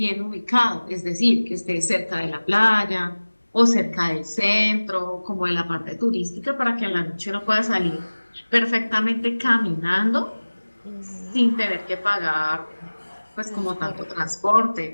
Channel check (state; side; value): inverted; both; correlation -1.00